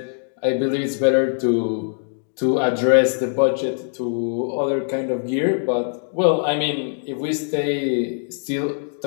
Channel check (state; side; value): silent; right; 64 dB below the other